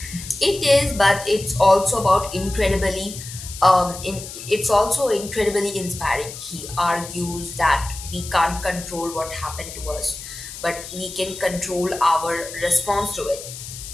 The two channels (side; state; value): left; noise; hiss, 12 dB below the sound